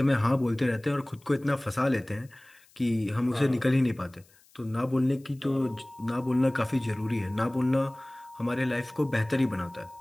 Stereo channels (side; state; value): left; noise; hiss, 29 dB below the sound